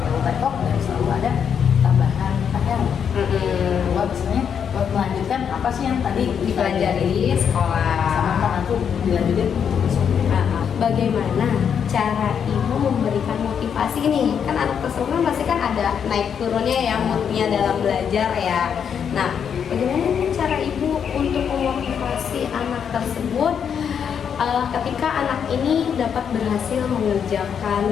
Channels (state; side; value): quieter; right; 7.6 dB